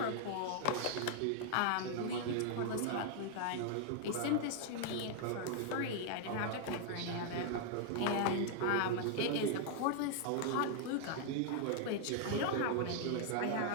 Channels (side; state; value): both; different; correlation 0.00